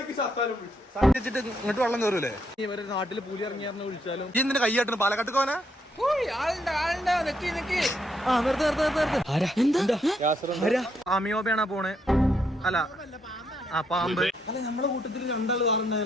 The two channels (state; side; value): normal; both; correlation 0.75